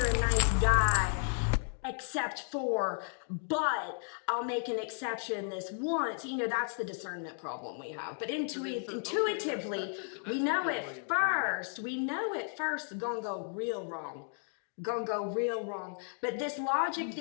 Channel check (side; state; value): right; silent; 55 dB below the other